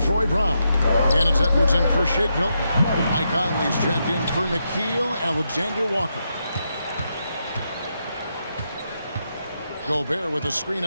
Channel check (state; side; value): inverted; both; correlation -0.83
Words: Brown. And it's Edwards in for Shake Milton. Mike Conley's checked in for Nickeil Alexander-Walker. Gobert with a screen